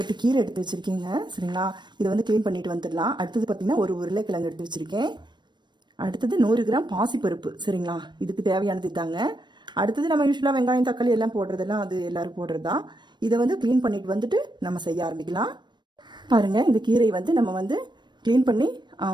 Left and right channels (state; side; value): late; left; 0.22 ms